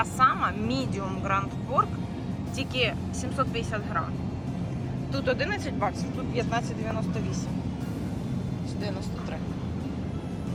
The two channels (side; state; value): both; identical; correlation 1.00